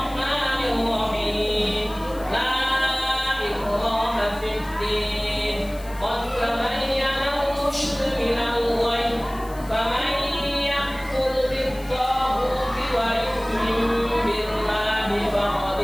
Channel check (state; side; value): noise; left; hiss, 20 dB below the sound